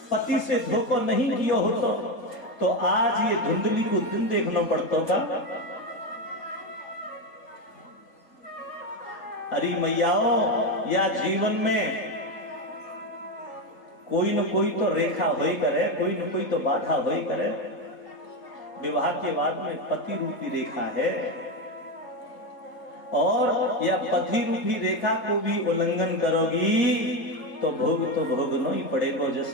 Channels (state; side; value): late; right; 4.2 ms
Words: पति से धोखा नहीं किया हो तो आज ये धुंधली को दिन देखना पड़ता था। अरे मैयाओ, या जीवन में कोई न कोई तो रेखा होई करे, कोई न कोई तो बाधा होई करे। विवाह के बाद में पति रूपी रेखा है, और या पति रूपी रेखा को भी उल्लंघन करोगी तो भोगना ही पड़ेगा,